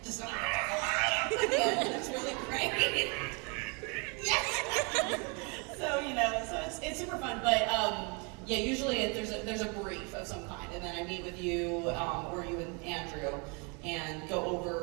just... It's really great. Yes! So it's super fun, but usually there's a brief of some kind, and then I meet with you or you and Andrew and go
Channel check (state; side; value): quieter; left; 32.7 dB